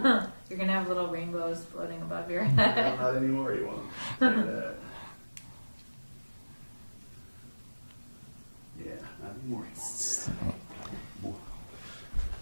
You're gonna have little rainbows floating above your head. Not anymore, you won't. Yeah, not anymore.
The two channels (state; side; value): inverted; both; correlation -1.00